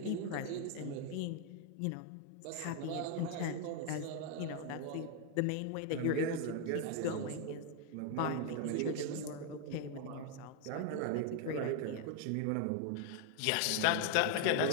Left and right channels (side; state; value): both; different; correlation 0.00